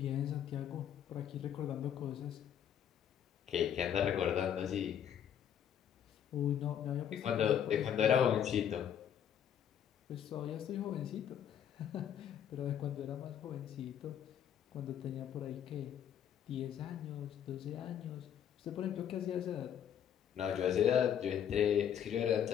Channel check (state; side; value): quieter; right; 9.3 dB